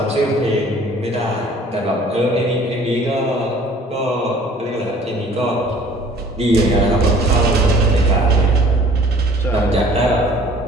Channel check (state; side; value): normal; both; correlation 0.52